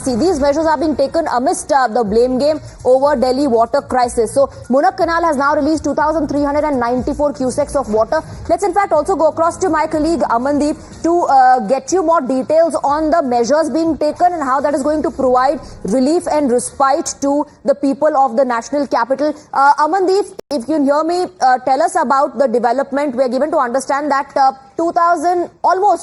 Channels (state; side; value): identical; both; correlation 1.00